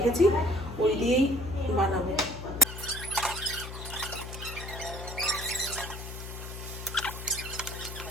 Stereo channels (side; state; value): left; noise; hum, 9 dB below the sound